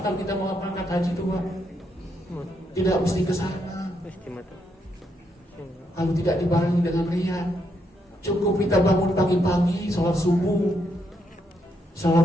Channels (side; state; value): both; normal; correlation 0.78